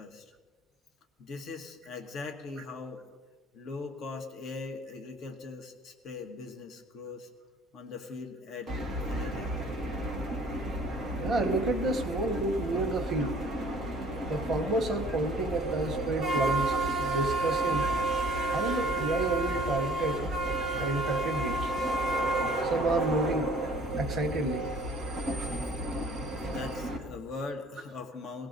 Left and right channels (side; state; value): both; normal; correlation 0.54